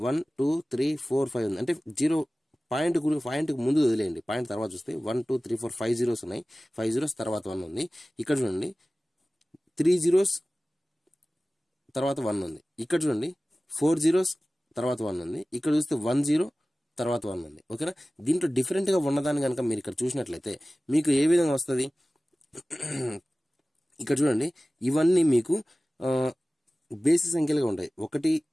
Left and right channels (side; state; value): both; normal; correlation 0.97